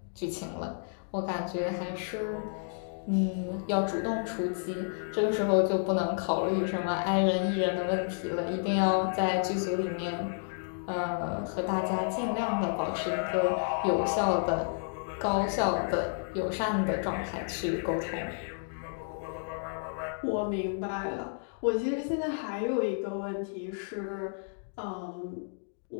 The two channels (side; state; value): right; silent; digital silence